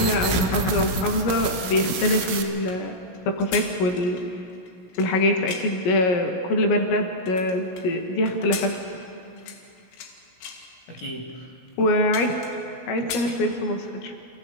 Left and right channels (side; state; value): right; late; 17 ms